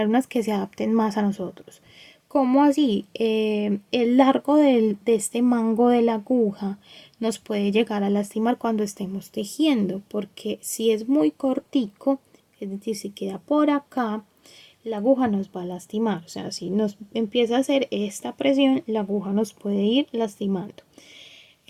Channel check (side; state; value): both; identical; correlation 1.00